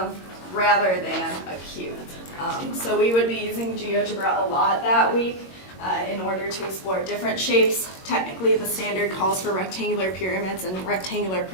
rather than a cube. So we would be using GeoGebra a lot that week in order to explore different shapes. Technically, the standard calls for rectangular pyramids and rectangular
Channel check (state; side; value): late; right; 22 ms